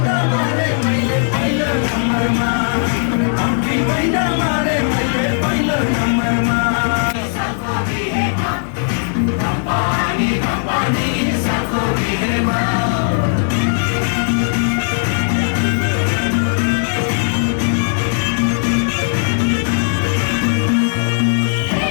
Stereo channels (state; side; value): silent; right; 60 dB below the other